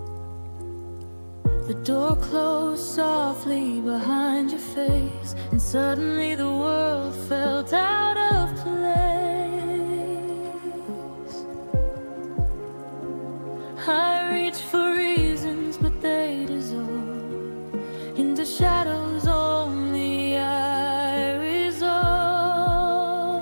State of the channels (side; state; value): both; inverted; correlation -1.00